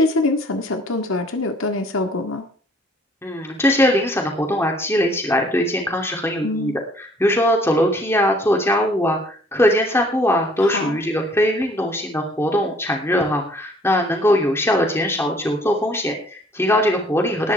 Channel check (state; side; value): normal; both; correlation 0.58